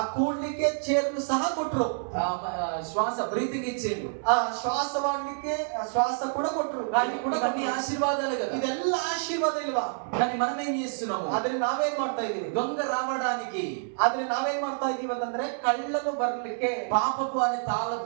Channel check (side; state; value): left; silent; 58 dB below the other